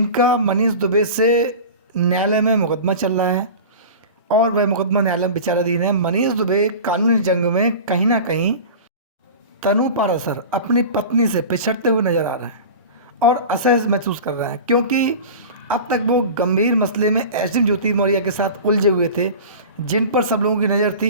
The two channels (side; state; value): both; inverted; correlation -0.34